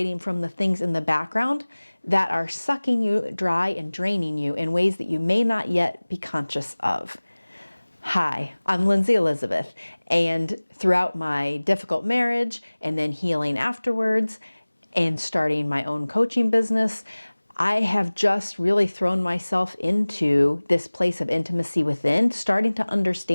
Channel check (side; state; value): both; inverted; correlation -1.00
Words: from the things in the background that are sucking you dry and draining you in ways that you may not yet be conscious of. Hi, I'm Linzy Elizabeth, and throughout my difficult marriage and then healing afterwards and starting my own coaching business, I have just really thrown myself into this place of intimacy within, starting to